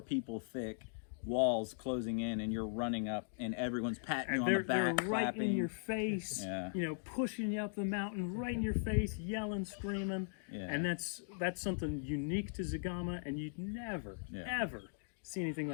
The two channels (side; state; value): right; silent; digital silence